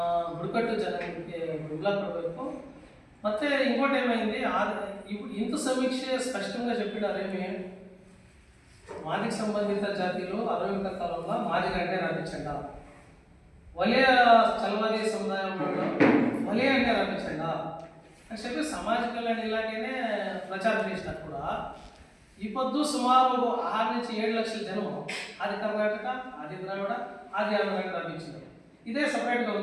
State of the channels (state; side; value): identical; both; correlation 1.00